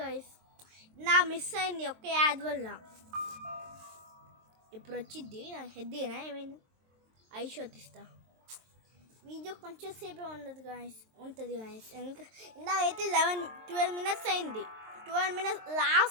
వాయిస్ నా మిస్ అయింది ఒక్క యాద్ వల్ల. ఇప్పుడు వచ్చిద్ది నా హెడ్డేనా ఏమైంది ఐషోట్ ఇస్తా. వీడియో కొంచెం సేపే ఉంటుంది గాయస్. ఇందాకైతే 12 minutes అయింది. 12 minutes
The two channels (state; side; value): late; left; 23 ms